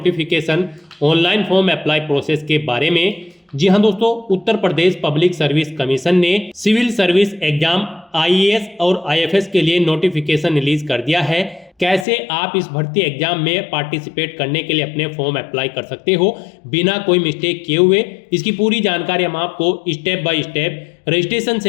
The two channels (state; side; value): drops out; right; at 12.1 s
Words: online form apply process के बारे में। जी हाँ दोस्तों, Uttar Pradesh public service commission ने सिविल सर्विस एग्जाम आईएएस और आईएफएस के लिए नोटिफिकेशन रिलीज कर दिया है। कैसे आप इस भर्ती एग्जाम में पार्टिसिपेट करने के लिए अपने फॉर्म अप्लाई कर सकते हो बिना कोई मिस्टेक किए हुए, इसकी पूरी जानकारी हम आपको स्टेप बाय स्टेप रजिस्ट्रेशन